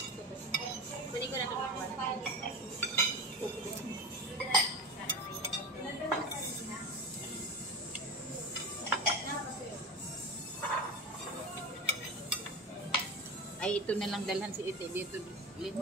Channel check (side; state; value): both; normal; correlation 0.27